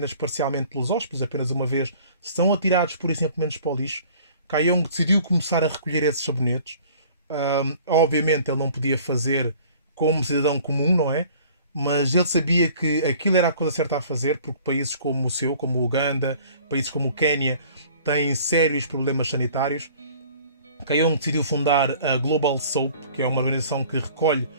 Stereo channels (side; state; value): both; inverted; correlation -0.51